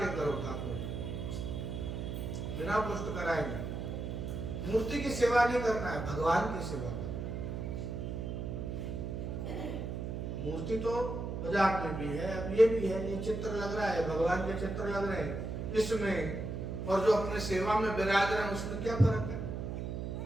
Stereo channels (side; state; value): right; noise; hum, 4 dB below the sound